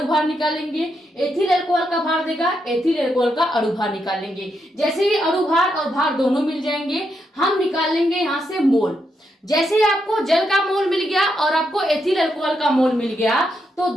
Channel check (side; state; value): both; normal; correlation 0.81